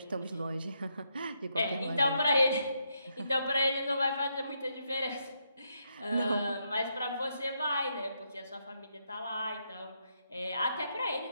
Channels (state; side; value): inverted; both; correlation -0.79